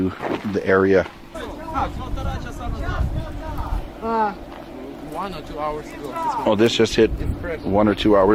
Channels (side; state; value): both; identical; correlation 1.00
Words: the area. 1 or 2 hours ago. Oh, this just hit 1 or 2